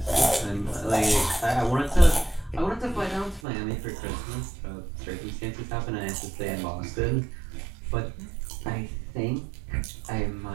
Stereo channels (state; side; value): drops out; left; at 3.4 s